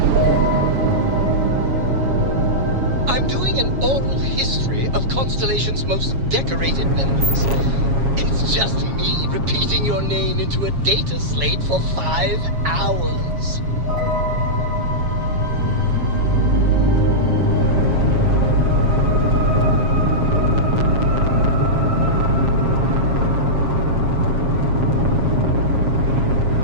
I'm doing an oral history of Constellation's most decorated members. It's just me repeating your name into a data slate for 5 hours.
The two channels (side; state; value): left; late; 7.3 ms